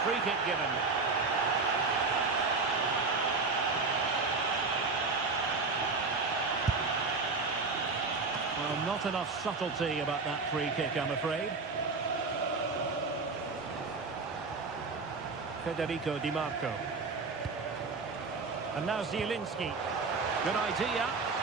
free kick given. Well, not enough subtlety about that free kick, I'm afraid. Federico Di Marco. And now Zielinski. Good idea.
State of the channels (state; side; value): quieter; left; 4.2 dB